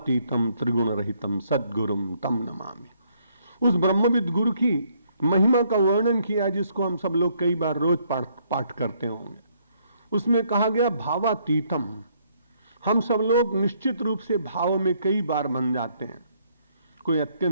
त्रिगुण रहितम सद्गुरुम तम नमामि। उस ब्रह्मविद गुरु की महिमा का वर्णन किया, जिसको हम सब लोग कई बार रोज पाठ करते होंगे। उसमें कहा गया भावातीतम। हम सब लोग निश्चित रूप से भाव में कई बार बन जाते हैं। कोई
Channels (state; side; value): inverted; both; correlation -0.69